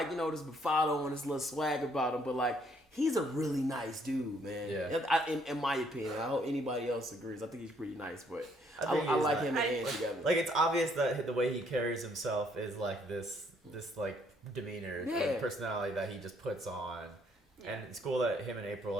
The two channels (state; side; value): normal; both; correlation 0.67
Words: this bravado and this little swag about him, but like he's a really nice dude, man. Yeah. In my opinion, I hope anybody else agrees. I think he's pretty nice, but I like him and Ann together. Like it's obvious that the way he carries himself is like this like demeanor, like, personality that he just puts on. And it's cool that him and April